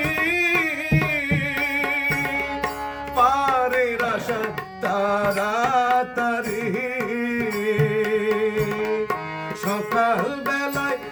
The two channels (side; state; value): both; identical; correlation 1.00